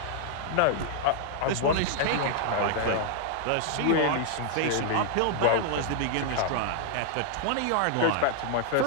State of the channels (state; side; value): different; both; correlation -0.01